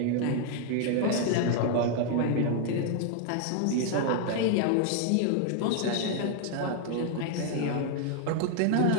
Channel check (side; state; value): both; different; correlation 0.00